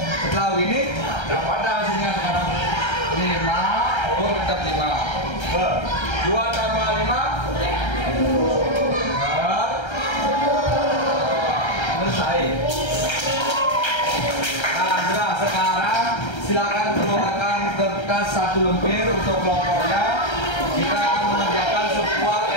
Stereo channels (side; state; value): right; late; 1.3 ms